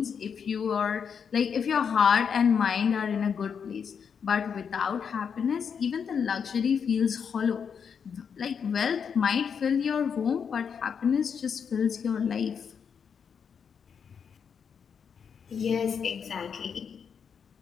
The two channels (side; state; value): right; quieter; 6.8 dB